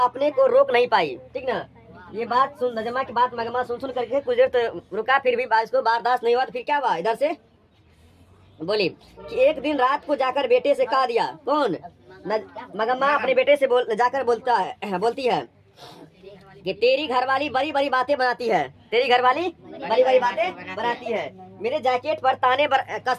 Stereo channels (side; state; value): both; identical; correlation 1.00